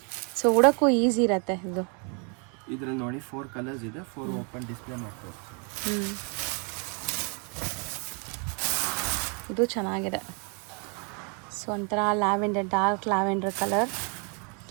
ಸೊ ಉಡೋಕ್ಕೂ ಈಸಿ ಇರುತ್ತೆ ಇದು. ಇದ್ರಲ್ಲಿ ನೋಡಿ 4 ಕಲರ್ಸ್ ಇದೆ. 4 ಓಪನ್ ಡಿಸ್ಪ್ಲೇ ಮಾಡ್ತಾರೆ. ಇದು ಚೆನ್ನಾಗಿದೆ. ಸೊ ಒಂಥರ lavender, dark lavender colour,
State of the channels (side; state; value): left; quieter; 37.1 dB